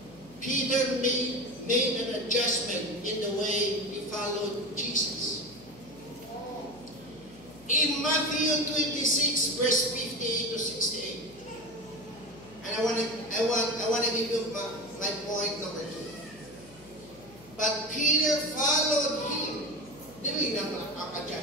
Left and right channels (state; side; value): noise; left; hum, 23 dB below the sound